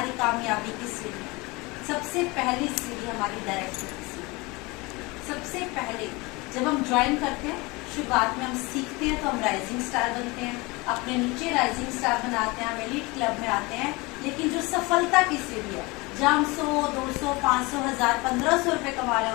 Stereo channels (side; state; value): right; quieter; 24.6 dB